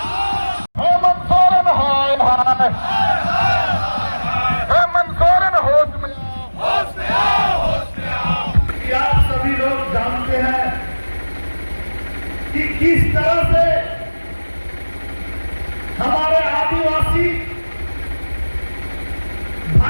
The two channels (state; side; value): inverted; both; correlation -1.00